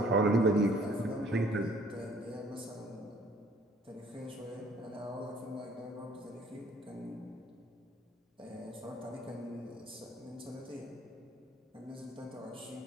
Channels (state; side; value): normal; both; correlation 0.58